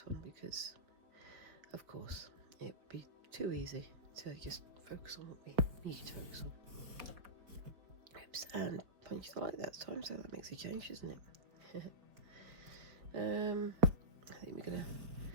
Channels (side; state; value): left; late; 4.2 ms